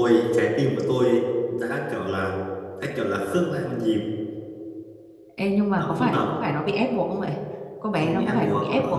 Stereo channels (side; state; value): both; identical; correlation 1.00